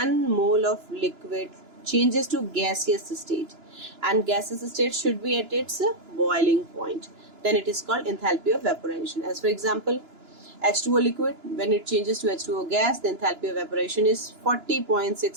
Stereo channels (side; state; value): left; late; 2.9 ms